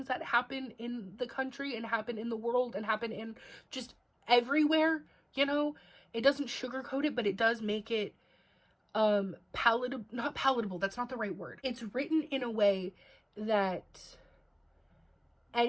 that happen in the country and happen in the world and happen in just everywhere, you know? It doesn't sugarcoat it, but it does make it palatable. Not palatable, that's not the right word. It's written in a way that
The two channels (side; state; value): both; identical; correlation 1.00